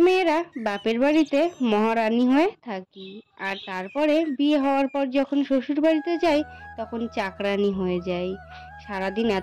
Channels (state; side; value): identical; both; correlation 1.00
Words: মেয়েরা বাপের বাড়িতে মহারানী হয়ে থাকি, আর তারপরে বিয়ে হওয়ার পর যখন শ্বশুর বাড়িতে যাই তখন চাকরানী হয়ে যাই। সারাদিন